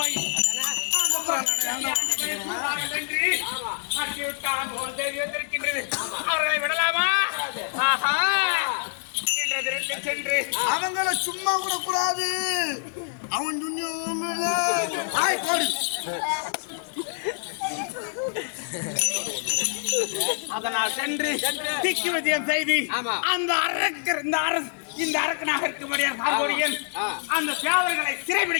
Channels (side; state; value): right; silent; 61 dB below the other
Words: அவர்களை விடலாமா? சென்று அவங்கள சும்மா கூட கூடாது. அவன் போடு. அதனால் சென்று திக்கு விஜயம் செய்து அந்த அரக்கர் இந்த அரக்கனாக இருக்கும்படியாக அந்த சேவர்களை